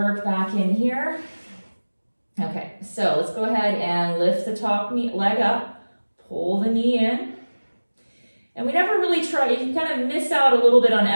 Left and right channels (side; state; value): both; inverted; correlation -1.00